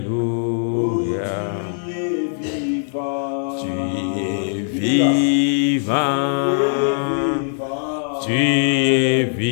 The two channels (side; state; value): right; silent; 61 dB below the other